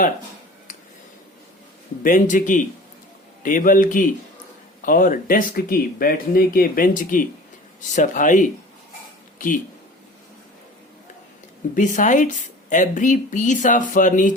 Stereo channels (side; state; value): both; normal; correlation 0.42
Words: बेंच की, टेबल की और डेस्क की, बैठने के बेंच की सफाई की। Besides every piece of